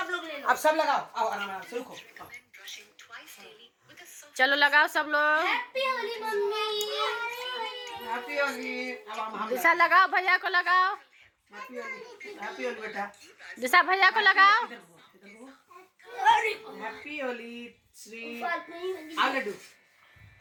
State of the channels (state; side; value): identical; both; correlation 1.00